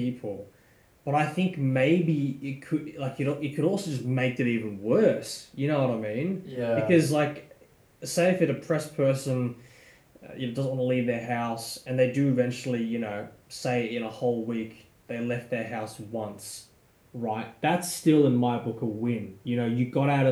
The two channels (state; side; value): identical; both; correlation 1.00